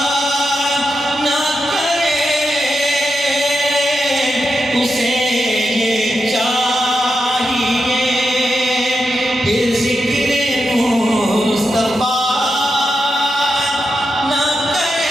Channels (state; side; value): normal; both; correlation 0.87